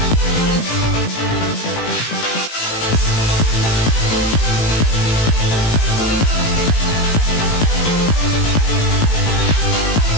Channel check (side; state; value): right; late; 18 ms